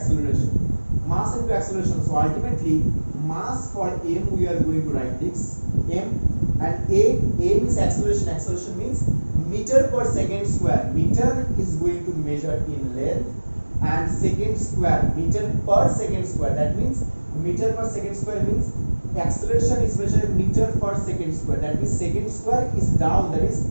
Mass into acceleration. So ultimately, mass for m we are going to write this m, and a means acceleration. Acceleration means meter per second square. Meter is going to measure in length, and second square, meter per second square. That means meter per second square means acceleration is measured meter per second square. That means second square is down, that is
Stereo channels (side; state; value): both; inverted; correlation -1.00